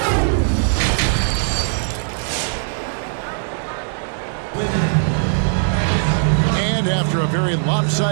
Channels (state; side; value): silent; left; 64 dB below the other